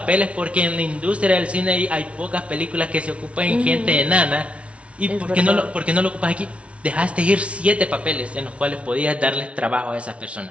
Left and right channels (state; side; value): late; left; 0.062 ms